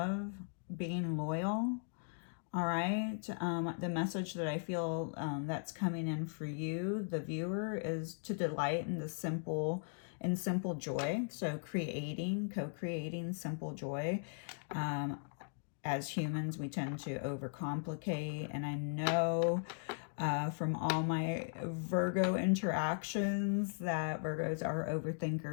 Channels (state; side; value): silent; right; digital silence